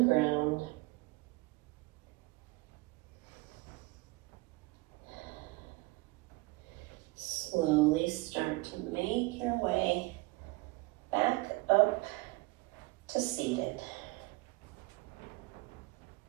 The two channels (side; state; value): left; quieter; 23.0 dB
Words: Slowly start to make your way back up to seated.